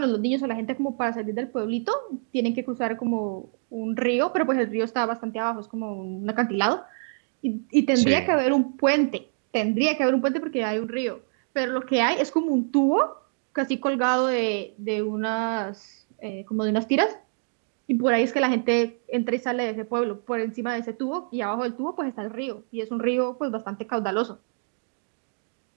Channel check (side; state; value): left; silent; digital silence